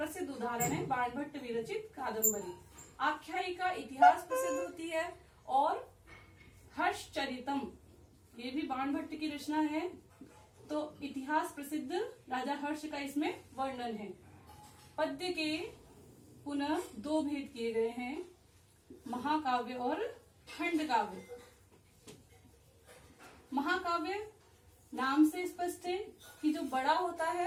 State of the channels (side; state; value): both; identical; correlation 1.00